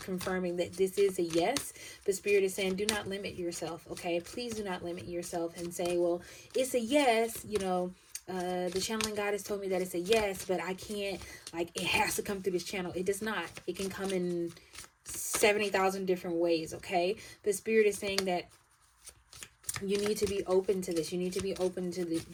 confirming that this is a yes. But spirit is saying, do not limit yourself. Okay, please do not limit yourself and say, well, it's a yes. The channeling goddess told me that it's a yes, but I can't, like, it has to come through this channel. It does not. It can come in 70,000 different ways. Okay, the spirit is saying that you need to be open to this. You need to be open to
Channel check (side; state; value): both; identical; correlation 1.00